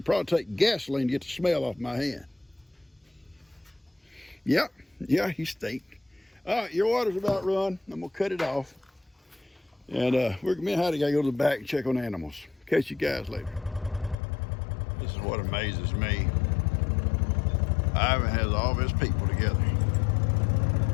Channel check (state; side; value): drops out; right; at 14.2 s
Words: probably take gasoline to get the smell off my hand. Yep, yeah, he stink. All right, your water's about run. I'm gonna cut it off. And me and Heidi gotta go to the back and check on the animals. Catch you guys later. This is what amazes me. Ivan has all of his people together.